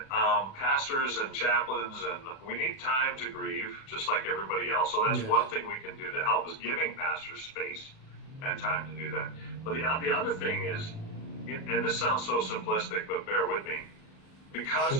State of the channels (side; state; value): right; late; 37 ms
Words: pastors and chaplains, and we need time to grieve just like everybody else. So that's one thing we can do to help is giving pastors space and time to do that. But the other thing is, and this sounds so simplistic, but bear with me, because